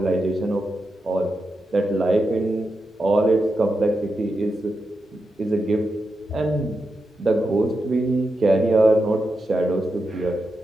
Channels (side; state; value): both; normal; correlation 0.88